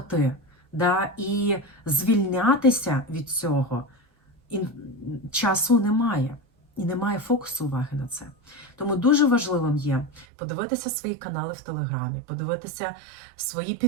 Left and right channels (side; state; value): left; drops out; at 10.2 s